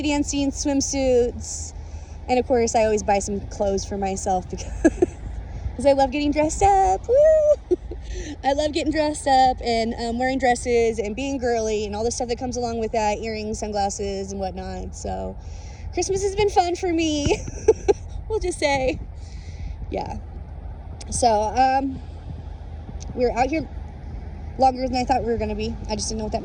dancing, swimsuits, and of course, I always buy some clothes for myself because I love getting dressed up. Woo! I love getting dressed up and wearing dresses and being girly and all the stuff that comes along with that, earrings, sunglasses, and whatnot. So, Christmas has been fun for me. We'll just say, yeah. So, we're out here longer than I thought we were going to be. I just didn't know what that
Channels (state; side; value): identical; both; correlation 1.00